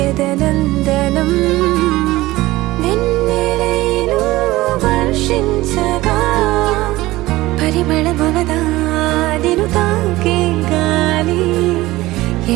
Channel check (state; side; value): quieter; left; 18.4 dB